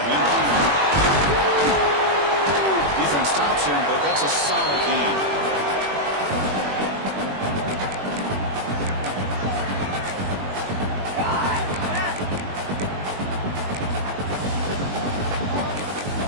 Defense stops him, but that's a solid gain.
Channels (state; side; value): late; left; 21 ms